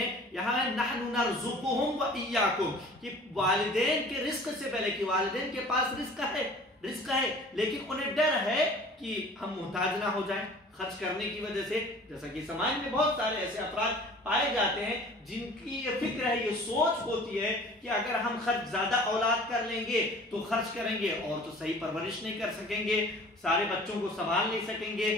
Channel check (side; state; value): both; normal; correlation 0.46